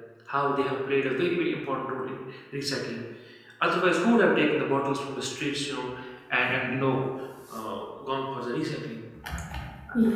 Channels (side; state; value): both; identical; correlation 1.00